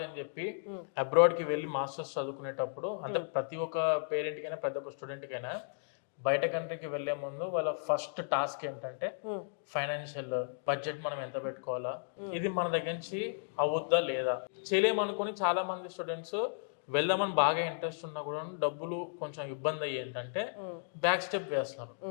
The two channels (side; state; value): right; silent; digital silence